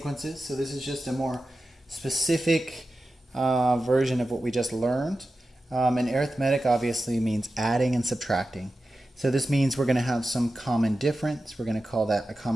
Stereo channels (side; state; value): both; normal; correlation 0.93